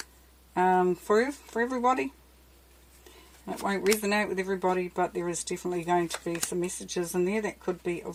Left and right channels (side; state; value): both; identical; correlation 1.00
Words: for everybody. It won't resonate with everybody, but there is definitely going to be some messages in there that could be